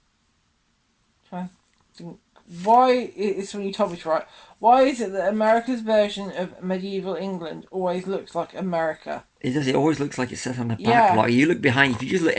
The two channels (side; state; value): both; identical; correlation 1.00